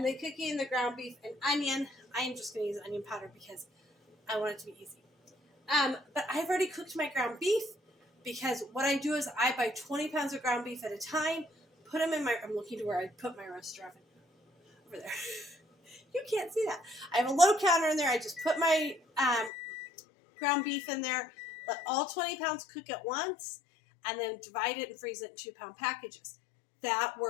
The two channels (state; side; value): drops out; right; at 19.5 s